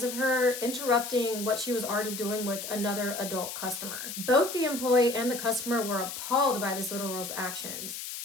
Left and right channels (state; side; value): noise; left; hiss, 7 dB below the sound